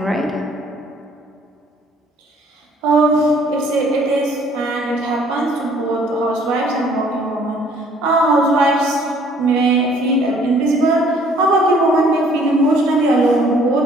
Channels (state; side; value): normal; both; correlation 0.59